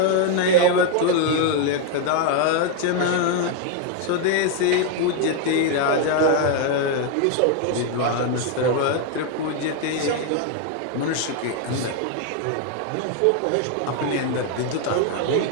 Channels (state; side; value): different; both; correlation 0.01